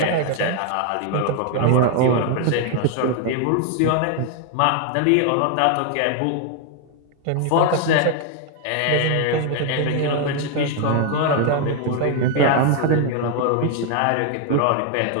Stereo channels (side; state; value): both; different; correlation 0.01